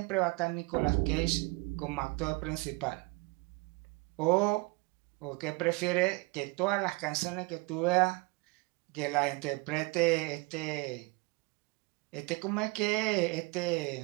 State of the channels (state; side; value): quieter; left; 26.5 dB